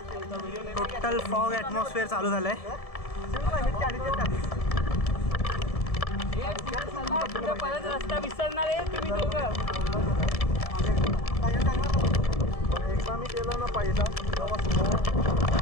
टोटल फॉग ॲटमॉस्फिअर चालू झालं आहे. परत रस्ता विसरणार आहे तुम्ही दोघं. एकदा मी केलं ना पहिला,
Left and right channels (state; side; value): late; right; 1.7 ms